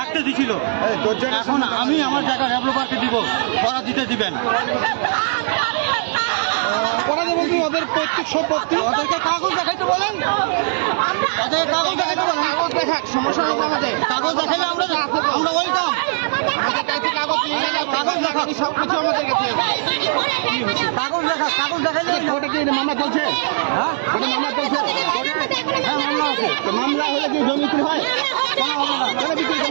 দিছিল। এখন আমি আমার জায়গা ডেভেলপারকে দিব, ওরা দিতে দিবেন। ওরা দেবো কি ওদের পৈতৃক সম্পত্তি? ওদেরকে কাগজ দেখাইতে বলেন, ওদের কাগজ দেখাইতে বলেন। কাগজ দেখাক, সমস্যা নেই আমাদের। কাগজ দেখাইলে আমরা ওয়েলকাম। কাগজ দেখাক, সব কিছু আমাদের কাছে। কাগজ দেখাক, কাগজ দেখাইলে ওটা কি মামলা চলছে? হ্যাঁ ওটা মামলা চলছে? হ্যাঁ মামলা আছে। তো মামলা হলে কি জমি বিক্রি হয়? কেন বিক্রি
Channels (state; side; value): silent; left; digital silence